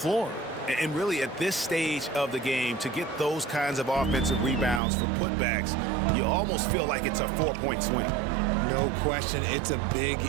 And really, at this stage of the game, to get those kinds of offensive rebounds for putbacks, you almost feel like it's a 4-point swing. No question, it's a big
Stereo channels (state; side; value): drops out; left; at 4.8 s